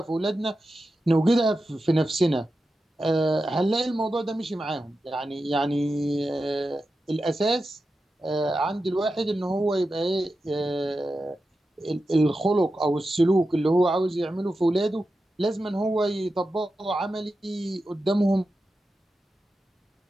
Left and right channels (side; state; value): both; normal; correlation 0.91